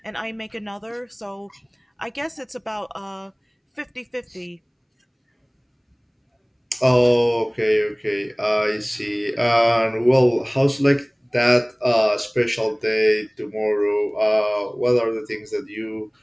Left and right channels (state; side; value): identical; both; correlation 1.00